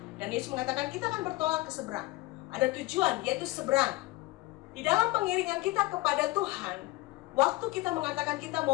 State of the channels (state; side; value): quieter; right; 20.4 dB